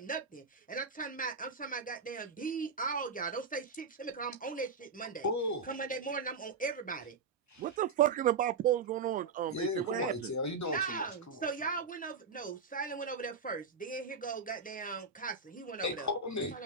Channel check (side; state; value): left; quieter; 4.8 dB